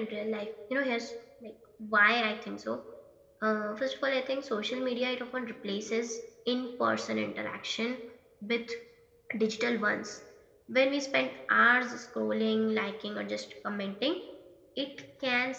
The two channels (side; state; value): both; identical; correlation 1.00